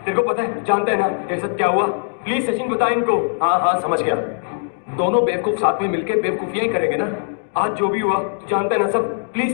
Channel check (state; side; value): silent; right; digital silence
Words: को पता है, जानता है ना तेरे साथ क्या हुआ? प्लीज सचिन बता इनको। हाँ हाँ समझ गया, दोनों बेवकूफ साथ में मिलकर बेवकूफियां ही करेंगे ना। आज जो भी हुआ तू जानता है ना सब।